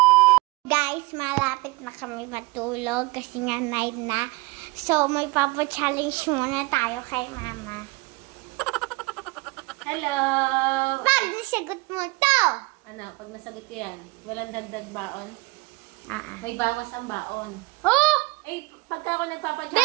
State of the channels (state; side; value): quieter; left; 24.8 dB